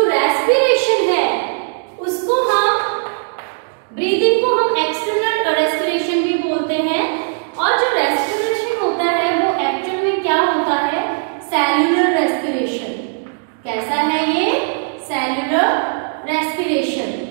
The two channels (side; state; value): left; silent; digital silence